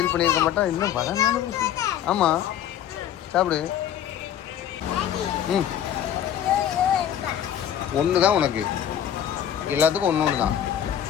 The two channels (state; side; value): quieter; right; 10.1 dB